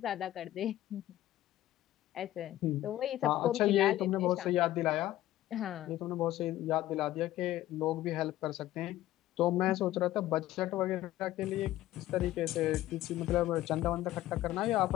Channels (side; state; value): right; quieter; 14.6 dB